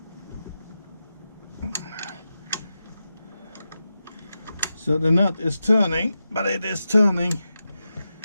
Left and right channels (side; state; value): both; inverted; correlation -0.91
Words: So the nut is turning, but it is turning